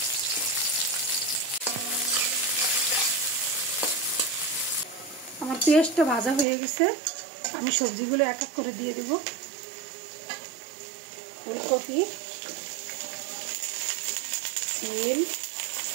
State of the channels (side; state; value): left; drops out; at 6.5 s